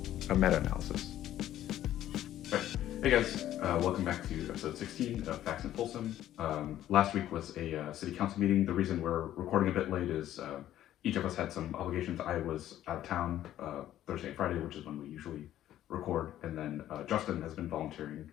A meta-analysis. Right. Hey guys, welcome back to episode 16 of Facts in Folsom. Last week was a city council meeting. The reason we're recording a bit late is each of us had some obligations. I was out of town Thursday and Friday, which is when we usually record, and then Justin has been volunteering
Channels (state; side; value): quieter; right; 12.5 dB